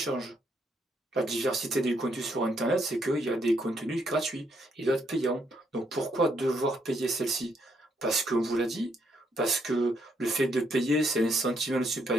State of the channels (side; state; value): both; normal; correlation 0.74